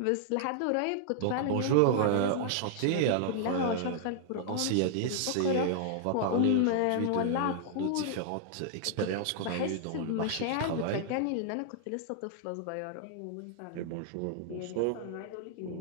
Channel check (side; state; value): both; different; correlation -0.01